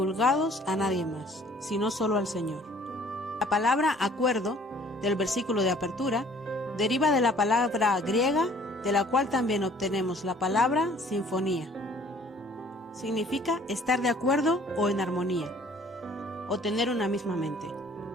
a nadie más, sino solo al Señor. La palabra acuerdo, del versículo de apertura, deriva de la palabra griega, de la cual también obtenemos la palabra sinfonía. Significa estar de acuerdo o en armonía, o tener una misma mente.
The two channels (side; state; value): both; normal; correlation 0.55